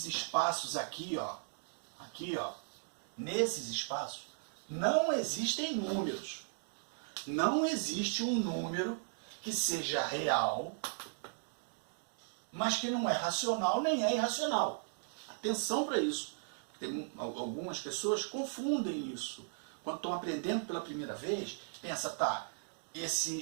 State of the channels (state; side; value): silent; left; digital silence